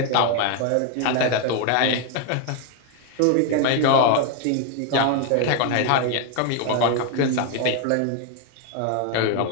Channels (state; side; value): different; both; correlation 0.01